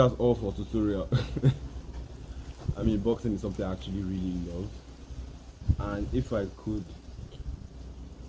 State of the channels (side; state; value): both; identical; correlation 1.00